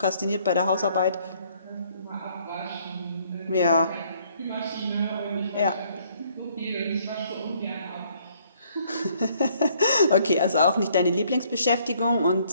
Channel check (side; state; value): both; inverted; correlation -0.65